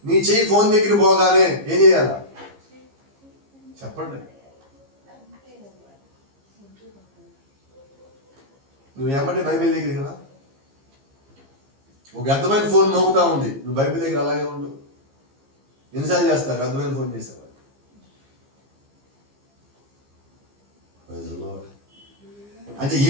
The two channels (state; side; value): late; left; 15 ms